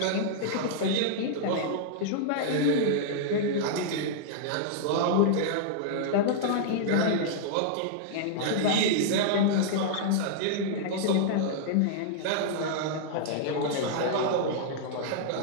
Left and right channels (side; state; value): both; different; correlation -0.01